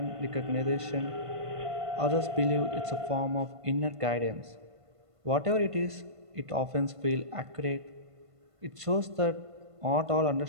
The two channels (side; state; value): left; late; 1.5 ms